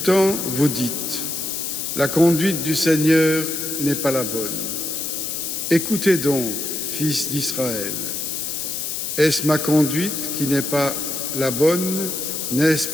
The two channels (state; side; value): noise; left; hiss, 3 dB below the sound